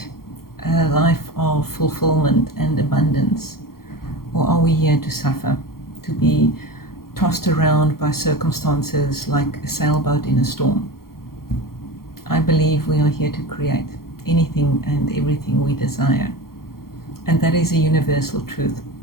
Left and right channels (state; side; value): late; right; 0.93 ms